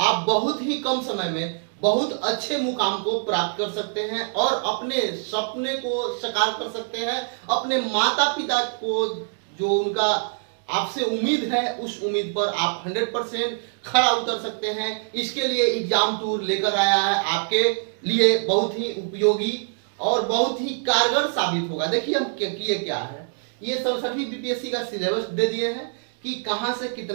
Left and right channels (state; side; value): silent; left; digital silence